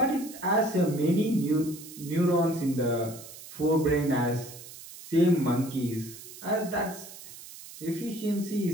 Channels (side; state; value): right; noise; hiss, 15 dB below the sound